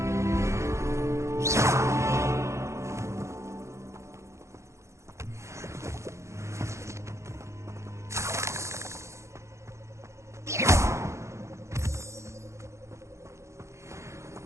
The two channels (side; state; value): left; late; 0.14 ms